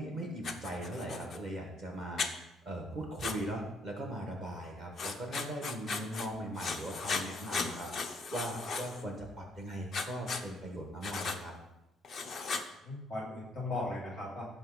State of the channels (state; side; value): normal; both; correlation 0.68